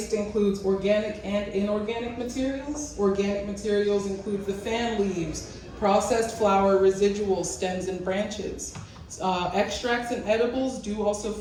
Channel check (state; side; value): identical; both; correlation 1.00